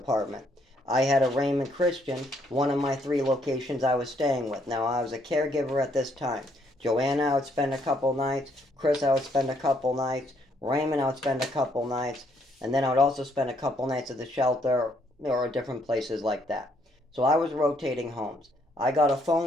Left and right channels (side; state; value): both; normal; correlation 0.70